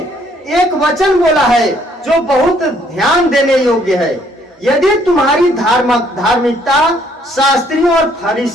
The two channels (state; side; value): normal; both; correlation 0.65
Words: एक वचन बोला है जो बहुत ध्यान देने योग्य है। यदि तुम्हारी धार्मिकता शास्त्रियों और